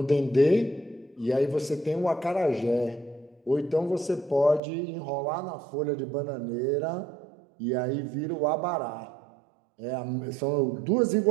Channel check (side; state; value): left; drops out; at 4.6 s